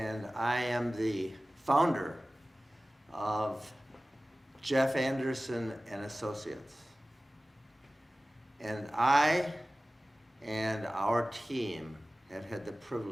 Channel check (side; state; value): both; normal; correlation 0.97